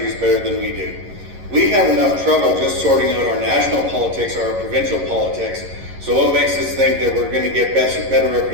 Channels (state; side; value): late; left; 11 ms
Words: better than we do. We have enough trouble just sorting out our national politics or our provincial politics. So what makes us think that we're going to get better